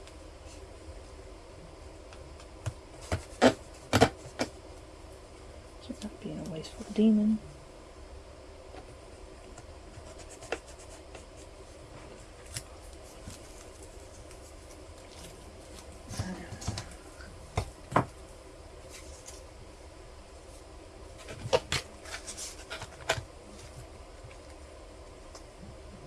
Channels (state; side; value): identical; both; correlation 1.00